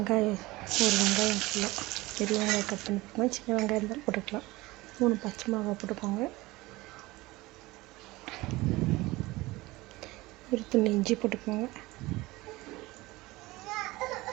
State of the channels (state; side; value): quieter; left; 20.4 dB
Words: ஒரு வெங்காயம் ஃபுல்லாக பெரிய வெங்காயம் கட் பண்ணி போட்டுக்கோங்க. சின்ன வெங்காயம் இருந்தாலும் போட்டுக்கலாம். 3 பச்சை மிளகாய் போட்டுக்கோங்க. ஒரு துண்டு இஞ்சி போட்டுக்கோங்க.